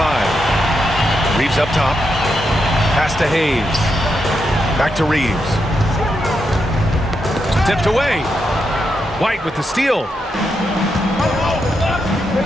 Reeves up top. Pass to Hayes. Back to Reeves. Tipped away. White with the steal.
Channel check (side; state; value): both; normal; correlation 0.83